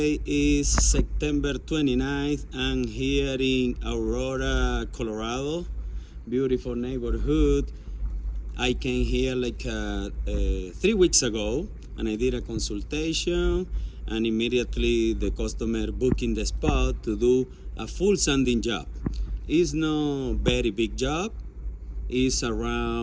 is September 29th. I'm here in Aurora, Colorado. Beautiful neighborhood. I came here like 3 weeks ago and I did a consultation, and immediately the customer booking the spot to do a full sanding job. It's no very big job. Is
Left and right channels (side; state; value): both; identical; correlation 1.00